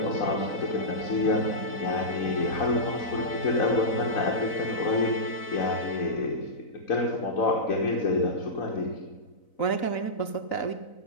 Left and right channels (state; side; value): late; right; 4.0 ms